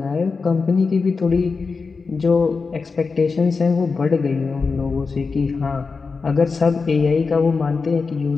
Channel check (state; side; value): quieter; right; 4.6 dB